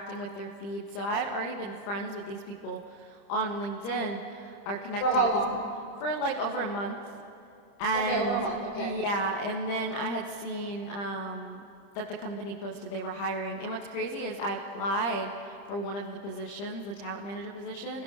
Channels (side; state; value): right; late; 31 ms